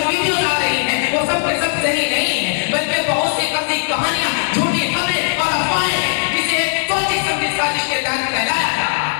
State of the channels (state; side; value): silent; right; digital silence